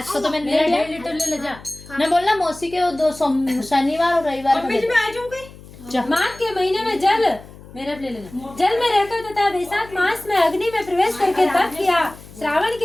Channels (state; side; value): noise; left; hum, 19 dB below the sound